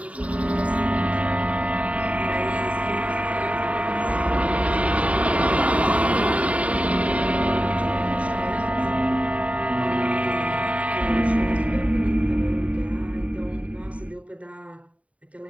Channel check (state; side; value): late; left; 0.066 ms